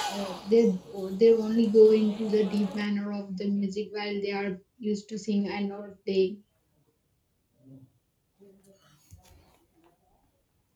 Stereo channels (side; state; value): both; identical; correlation 1.00